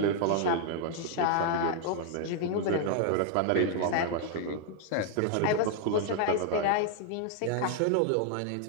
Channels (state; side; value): different; both; correlation 0.00